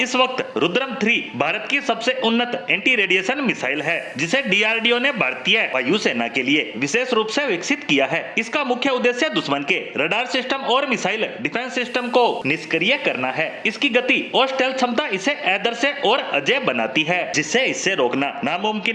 वक्त रुद्रम 3 भारत की सबसे उन्नत एंटी रेडिएशन मिसाइल है, जिसे डीआरडीओ ने भारतीय वायुसेना के लिए विशेष रूप से विकसित किया है। इसका मुख्य उद्देश्य दुश्मन के रडार सिस्टम और मिसाइल डिफेंस सिस्टम को निष्क्रिय करना है। इसकी गति और स्टेल्थ क्षमता इसे आदर्श और अजय बनाती है, जिससे इसे रोकना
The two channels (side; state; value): both; identical; correlation 1.00